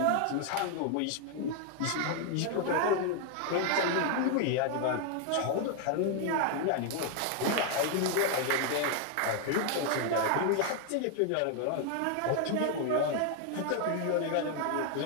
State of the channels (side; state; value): both; different; correlation 0.00